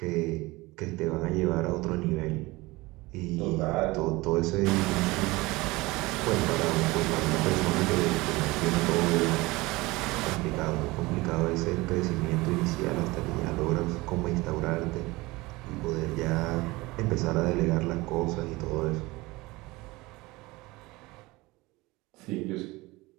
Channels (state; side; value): quieter; left; 21.7 dB